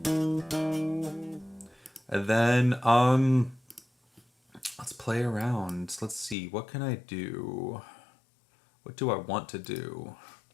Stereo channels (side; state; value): right; drops out; at 6.4 s